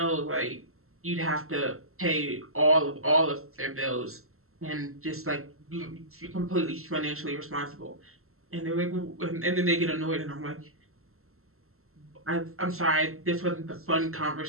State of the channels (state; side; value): late; left; 0.62 ms